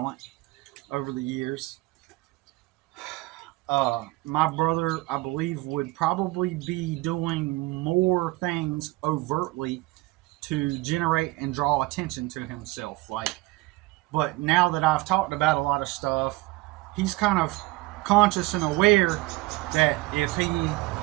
over the years, my brother, I believe, would probably be doing more things overtly to generate and draw attention to himself. But now that I've talked about a lot of stuff, he's kind of conscious and aware that if he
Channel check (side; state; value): left; quieter; 21.1 dB